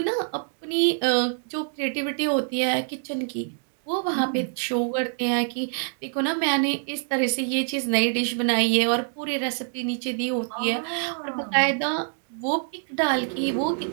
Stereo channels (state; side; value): silent; left; 59 dB below the other